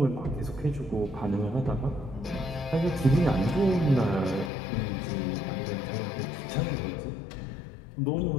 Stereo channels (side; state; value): right; drops out; at 4.5 s